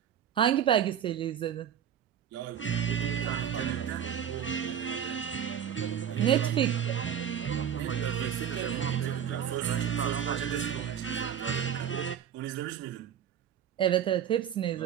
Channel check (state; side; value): quieter; left; 9.2 dB